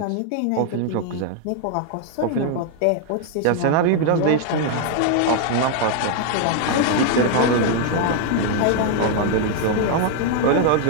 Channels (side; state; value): both; different; correlation 0.00